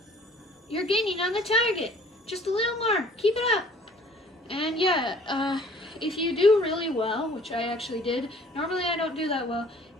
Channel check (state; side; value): normal; both; correlation 0.54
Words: You're gaining on the target. Just a little more. Keep it up. And yeah, if you do really well, which I actually did, normally I don't do that well,